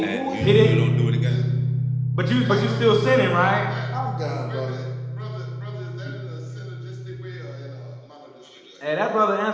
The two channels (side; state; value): both; identical; correlation 1.00